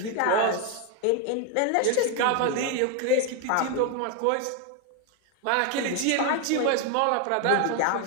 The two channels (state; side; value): different; both; correlation 0.01